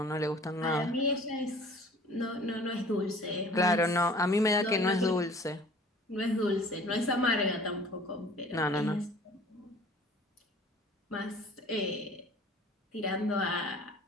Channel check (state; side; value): normal; both; correlation 0.49